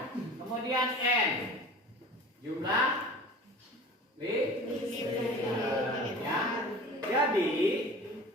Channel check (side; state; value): both; normal; correlation 0.40